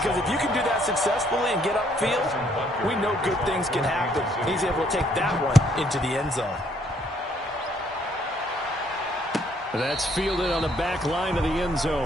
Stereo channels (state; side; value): normal; both; correlation 0.67